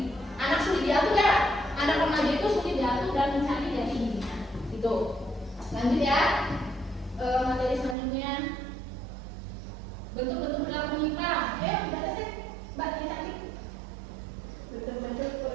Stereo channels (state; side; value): drops out; left; at 8.0 s